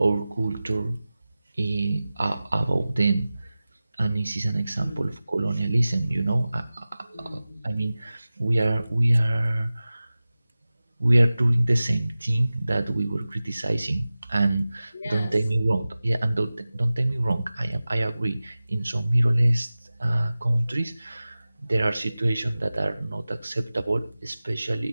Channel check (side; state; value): both; inverted; correlation -0.97